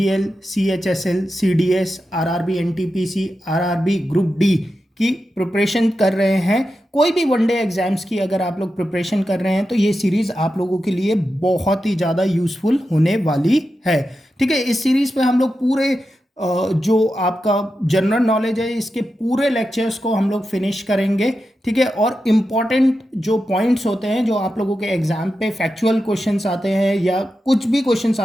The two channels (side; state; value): both; normal; correlation 0.90